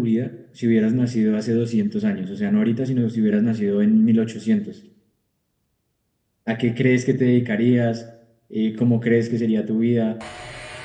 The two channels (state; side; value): identical; both; correlation 1.00